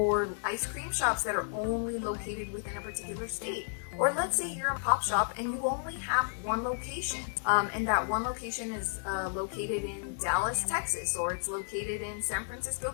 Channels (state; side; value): silent; right; digital silence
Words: ice cream shops that are only located within a particular state. Or let's say you're a pop shop and you only have one location, and that one location is located in Dallas, Texas, or it's located in San Francisco,